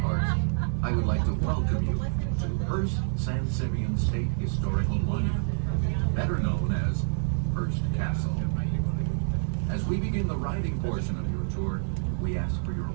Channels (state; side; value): silent; left; 56 dB below the other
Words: I would like to welcome you to Hearst San Simeon State Historical Monument, better known as Hearst Castle. As we begin the riding portion of your tour, we ask for your